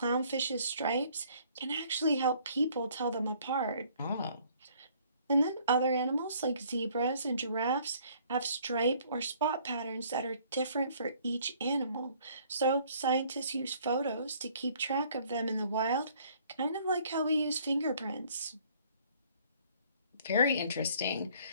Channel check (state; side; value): inverted; both; correlation -0.60